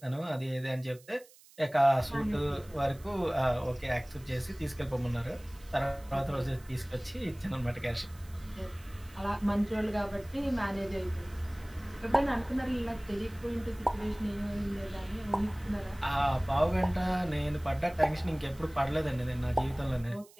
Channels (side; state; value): right; noise; hiss, 24 dB below the sound